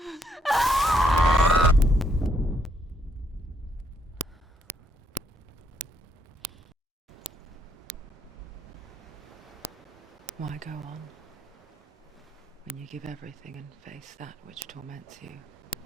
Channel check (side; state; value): both; normal; correlation 0.73